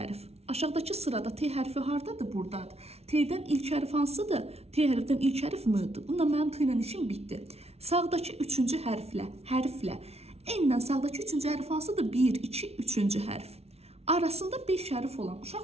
Aşağıdakı sırada T hərfi hardadır? Buradadır. T'dən ilk hərf hansıdır? T hərfdən ilk hərf M-dir. Bununla mənim T ilə işim bitdi. Sağdakı 3-cü hərflə N-dən sağdakı 3-cü hərf hansıdır? 1, 2, 3-cü hərf. Arasında 5 hərf olan,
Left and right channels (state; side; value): late; left; 0.30 ms